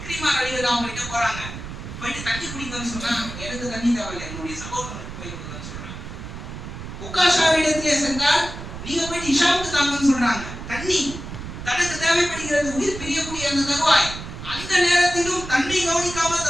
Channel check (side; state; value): right; noise; rumble, 10 dB below the sound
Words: ரலியல்லாஹு கிட்ட போறாங்க. போயிட்டு தண்ணி குடிங்கன்னு சொன்னா எனக்கு தண்ணி தேவையில்லை, என்னுடைய சகோதரனுக்கு போய் கொடுங்கன்னு சொல்றாங்க. உக்காஷாவிடத்திலே சென்றால் நீங்க போயிட்டு ஹிஷாமுக்கு தாங்கன்னு சொல்றாங்க. தண்ணி தனக்கு தேவைப்படுகிறது, உயிர் பிரியக்கூடிய அந்த தருவாய். அந்த நேரத்திலும் தன்னை கவனிக்காமல்